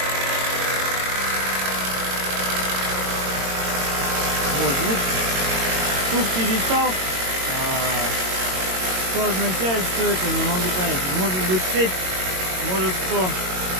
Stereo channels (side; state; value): left; late; 22 ms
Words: Вот звук перестал. Что означает, что это, не могу понять. Может быть цепь, может кто